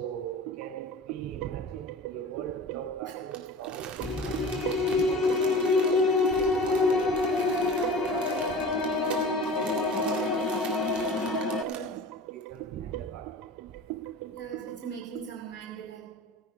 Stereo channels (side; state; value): both; normal; correlation 0.37